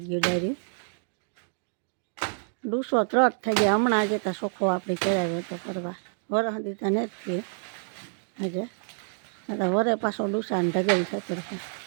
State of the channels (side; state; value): left; silent; 59 dB below the other